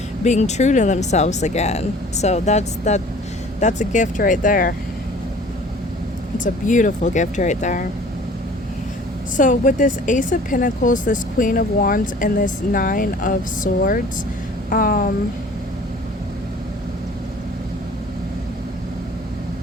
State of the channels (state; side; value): normal; both; correlation 0.49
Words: being true to themselves again. So that's a gift right there. It's a beautiful gift right there. So with this Ace of Pentacles, this Queen of Wands, and this Nine of Swords,